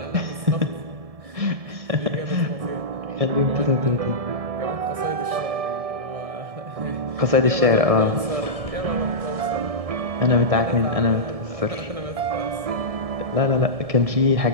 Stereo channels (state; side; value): late; left; 1.7 ms